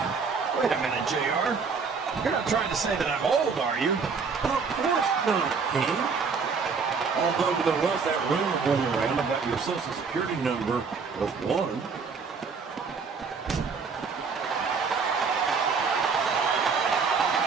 Wait a minute, JR. You're not trying to say that I'm old, are you? Of course not, King. Although there was that rumor going around about your social security number was 1.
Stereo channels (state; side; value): quieter; left; 5.3 dB